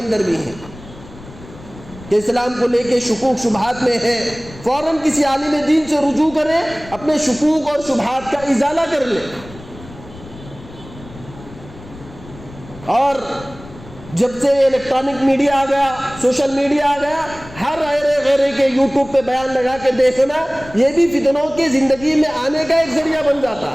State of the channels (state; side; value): noise; left; rumble, 18 dB below the sound